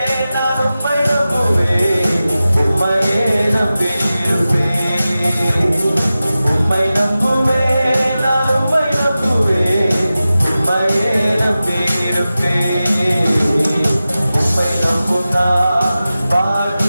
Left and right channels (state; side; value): inverted; both; correlation -0.95